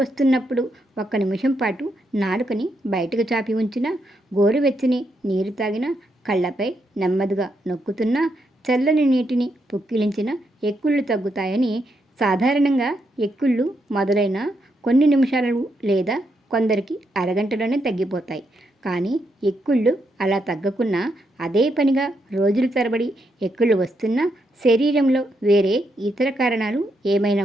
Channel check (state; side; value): normal; both; correlation 0.80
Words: వస్తున్నప్పుడు 1 నిమిషం పాటు నాలుకని బయటకు చాపి ఉంచిన, గోరువెచ్చని నీరు తాగిన, కళ్ళపై నెమ్మదిగా నొక్కుతున్నా, చల్లని నీటిని పుక్కిలించిన ఎక్కిళ్ళు తగ్గుతాయని. సాధారణంగా ఎక్కిళ్ళు మొదలైన కొన్ని నిమిషాలు లేదా కొందరికి అరగంటలోనే తగ్గిపోతాయి. కానీ ఎక్కిళ్ళు అలా తగ్గకున్నా, అదే పనిగా రోజుల తరబడి ఎక్కిళ్ళు వస్తున్నా, శరీరంలో వేరే ఇతర కారణాలు